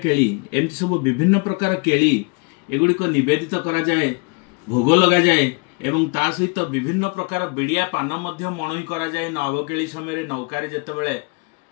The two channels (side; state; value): right; quieter; 31.9 dB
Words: एमती सब विभिन्न प्रकार केली एगुड़िक निवेदित करा जाए, भोग लगा जाए एवं ता सहित विभिन्न प्रकार बिड़िया पान मध्य मणई करा जाए। नवकेली समय नौकारे जेतेबेले